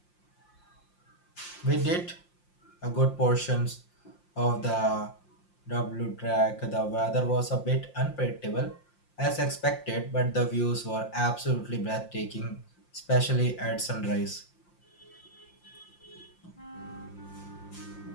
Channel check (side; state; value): right; late; 5.7 ms